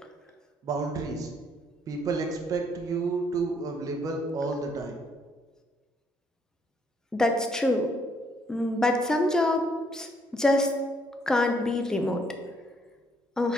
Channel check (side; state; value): both; normal; correlation 0.69